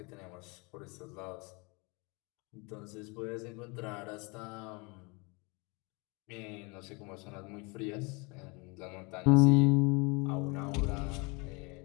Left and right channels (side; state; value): right; quieter; 29.0 dB